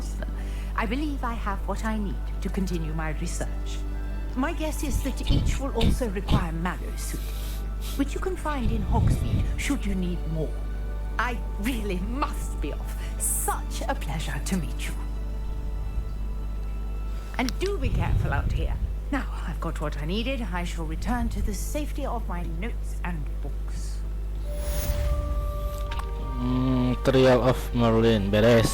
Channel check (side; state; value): both; identical; correlation 1.00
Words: them. I believe I have what I need to continue my research. My guess is that each will also require mallow sweet, which you can find in Hogsmeade should you need more. I really must be off. Such a pleasure to meet you. And do be careful out here. Now I've got what I needed. I shall return to the safety of my notes and books. Trial of Merlin, beres.